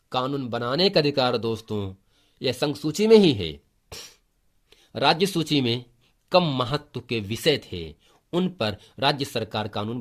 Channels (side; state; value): both; identical; correlation 1.00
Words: कानून बनाने का अधिकार दोस्तों यह संघ सूची में ही है। राज्य सूची में कम महत्व के विषय थे, उन पर राज्य सरकार कानून